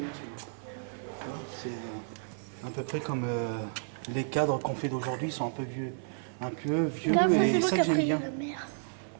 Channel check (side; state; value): left; silent; 57 dB below the other